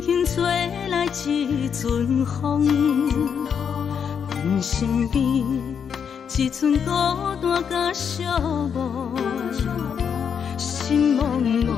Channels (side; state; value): right; quieter; 7.3 dB